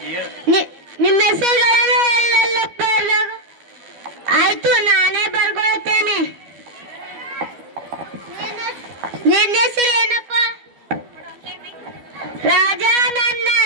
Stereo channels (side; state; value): left; late; 12 ms